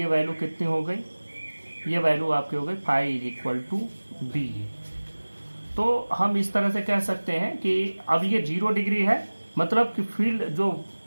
value कितनी हो गई, ये वैल्यू आपकी हो गई phi is equal to BA। तो हम इस तरह से कह सकते हैं कि अब ये 0 डिग्री है, मतलब कि फील्ड जो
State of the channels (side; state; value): both; inverted; correlation -1.00